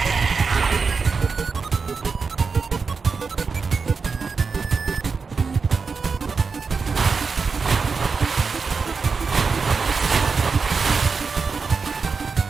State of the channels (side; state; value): left; quieter; 5.0 dB